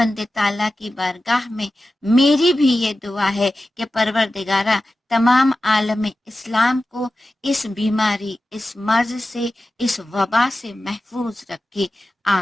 تعالیٰ کی بارگاہ میں میری بھی یہ دعا ہے کہ پروردگارہ تمام عالم اسلام کو اس بیماری، اس مرض سے، اس وبا سے محفوظ رکھے،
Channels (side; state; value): both; normal; correlation 0.94